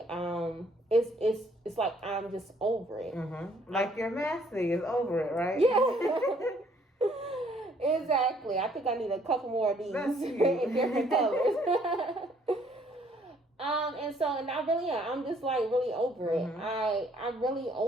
it's like I'm just over it. Like your master is over it, right? Yeah. Exactly. I think I need a couple more of these in different colors. And I really am. I'm just like really over it. I'm really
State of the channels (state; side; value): normal; both; correlation 0.64